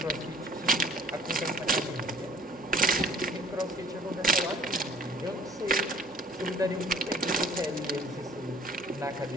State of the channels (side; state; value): both; normal; correlation 0.54